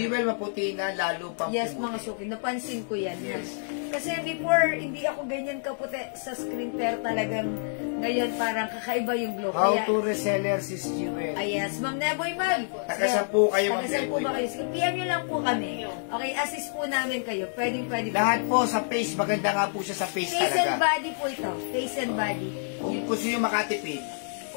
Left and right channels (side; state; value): right; silent; digital silence